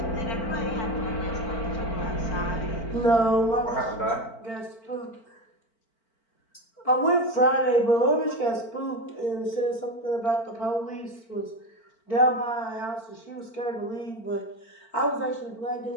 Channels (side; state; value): right; late; 4.4 ms